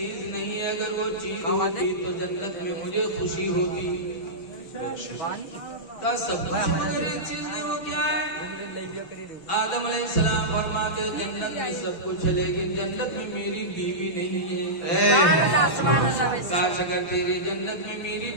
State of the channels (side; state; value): right; late; 6.0 ms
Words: नहीं है, अगर वो चीज होती तो जन्नत में मुझे खुशी होती। कहा सब कुछ मगर एक चीज नहीं, वो क्या है? आदम अलैहिस्सलाम फरमाते जन्नत में सब कुछ है लेकिन जन्नत में मेरी बीवी नहीं है। काश अगर तेरी जन्नत में मेरी